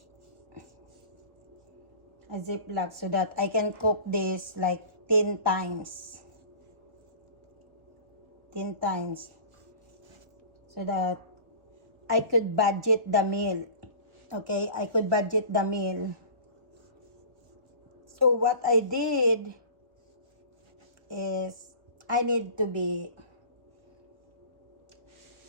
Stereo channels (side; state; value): left; late; 1.4 ms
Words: A Ziploc so that I can cook this like 10 times. 10 times. So that I could budget the meal. Okay, I could budget the meal. So what I did is I need to be